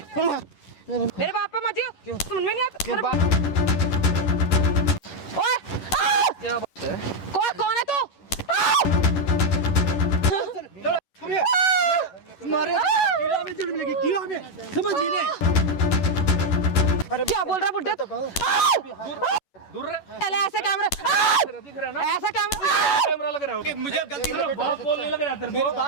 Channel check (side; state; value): right; late; 11 ms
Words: बाप पे मत जियो, समझ में नहीं आता। ओए क्या बात है? कौन है तू? मारे कीड़ा में जन्म लगी, कीड़ा में समझ नहीं। अरे क्या बोल रहा बुड्ढे तू? दूर रहे। पहले ऐसे कैमरा दिख रहा है ना? ऐसा कैमरा कैमरा लग रहा है। मुझे गलती तेरा बाप बोलने लग रहा है, तेरे